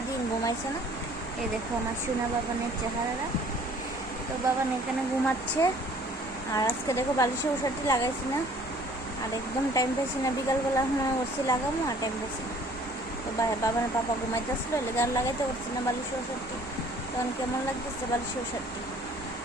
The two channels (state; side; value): normal; both; correlation 0.55